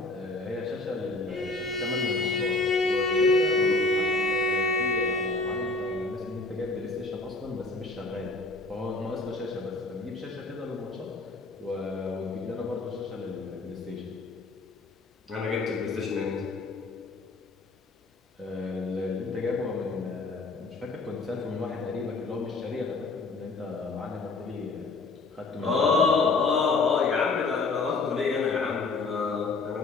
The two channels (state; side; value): quieter; right; 3.5 dB